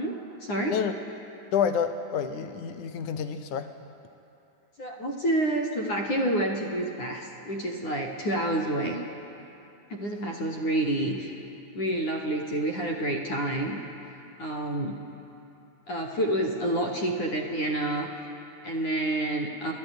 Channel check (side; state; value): right; late; 9.8 ms